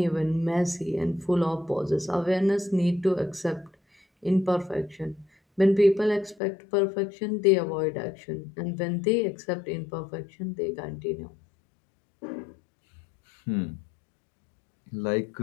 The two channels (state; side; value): drops out; right; at 6.4 s